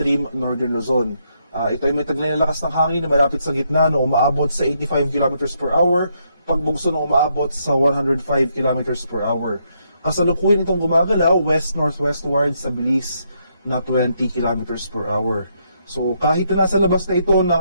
northern Luzon. Ito ay may taglay na lakas ng hangin na malapit sa gitna na umaabot sa 85 km per hour, pagbugso na umaabot sa 105 km per hour. Kasalukuyan itong gumagalaw west-northwestward sa bilis na 20 km per hour. So kahit na nasa labas na ito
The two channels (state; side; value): inverted; both; correlation -0.76